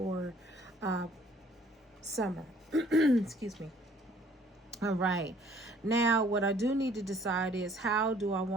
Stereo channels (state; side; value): normal; both; correlation 0.58